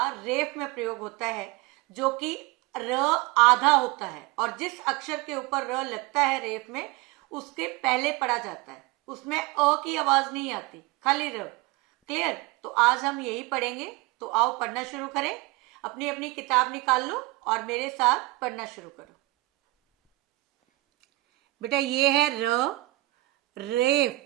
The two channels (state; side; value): quieter; left; 21.1 dB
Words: रेफ में प्रयोग होता है, जो कि र आधा होता है और जिस अक्षर के ऊपर र लगता है रेफ में, उसके पहले पढ़ा जाता है। उसमें अ की आवाज नहीं आती, खाली र। क्लियर? तो आज हम यही पढ़ेंगे। तो आओ पढ़ना शुरू करें। अपनी अपनी किताब निकाल लो और मेरे साथ पढ़ना शुरू करो। बेटा ये है र, रेफ,